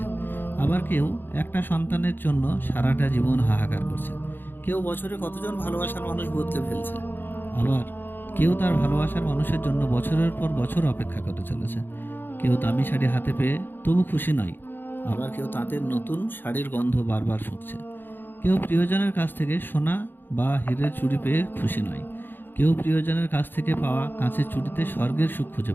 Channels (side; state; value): right; late; 0.097 ms